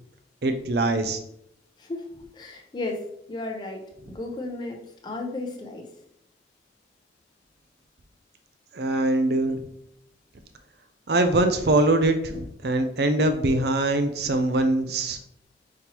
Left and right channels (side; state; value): both; normal; correlation 0.37